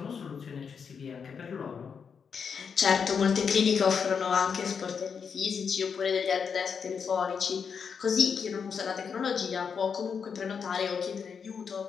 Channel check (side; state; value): right; quieter; 6.4 dB